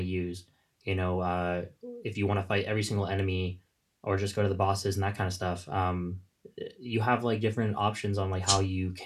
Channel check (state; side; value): identical; both; correlation 1.00